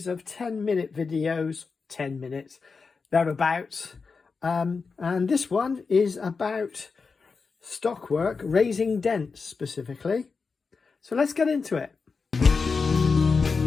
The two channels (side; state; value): right; quieter; 4.8 dB